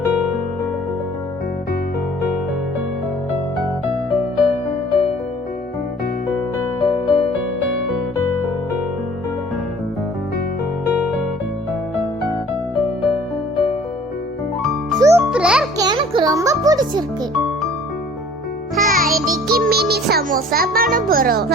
சூப்பரா இருக்கு. எனக்கு ரொம்ப பிடிச்சிருக்கு. இன்னைக்கு மினி சமோசா பண்ண போறோம்.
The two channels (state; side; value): normal; both; correlation 0.51